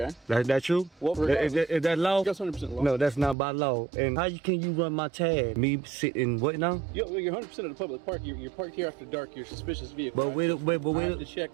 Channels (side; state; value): left; drops out; at 3.4 s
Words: That true? Well, Is that law? That's 100% law. No, that's not by law. And how can you run my tag? Me sitting what now? You're 100% in a public park. You're parked here after dark. You're a suspicious vehicle. But wait.